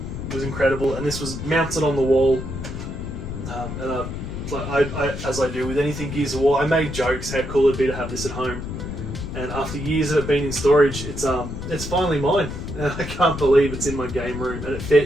was incredible, and this was mounted on the wall. As I do with anything Gears of War, I made jokes how cool it'd be to have this at home. And after years of it being in storage, it's finally mine. And I can't believe it's in my game room and it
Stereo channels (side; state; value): left; noise; rumble, 7 dB below the sound